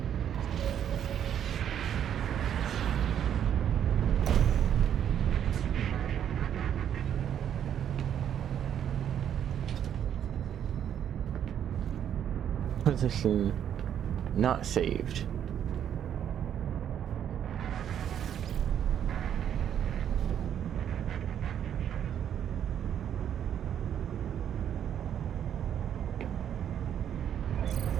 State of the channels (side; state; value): left; quieter; 9.5 dB